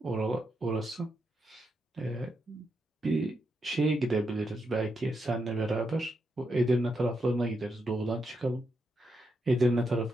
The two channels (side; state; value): both; normal; correlation 0.83